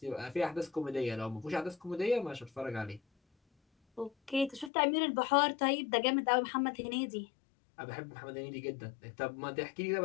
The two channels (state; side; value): drops out; right; at 4.7 s